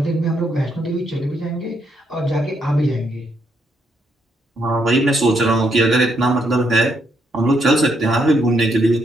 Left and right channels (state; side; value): normal; both; correlation 0.76